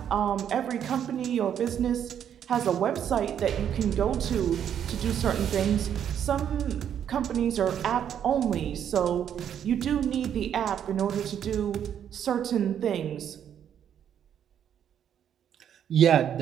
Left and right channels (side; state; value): left; quieter; 9.2 dB